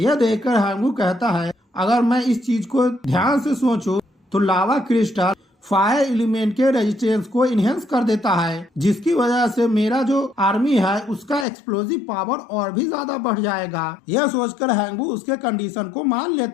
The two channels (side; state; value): right; drops out; at 11.5 s